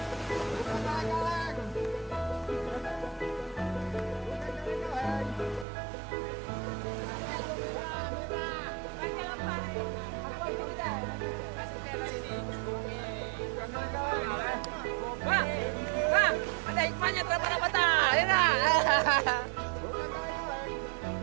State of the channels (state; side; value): drops out; left; at 5.7 s